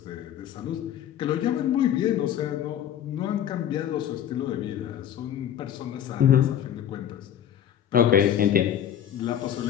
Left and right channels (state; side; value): quieter; right; 10.2 dB